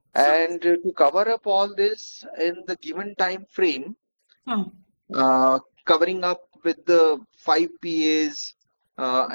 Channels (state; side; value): inverted; both; correlation -1.00